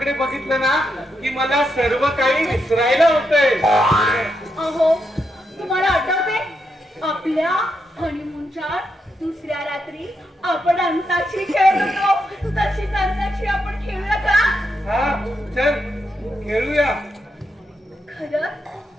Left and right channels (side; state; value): both; normal; correlation 0.83